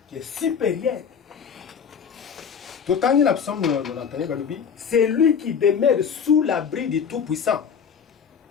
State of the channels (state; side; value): quieter; right; 6.9 dB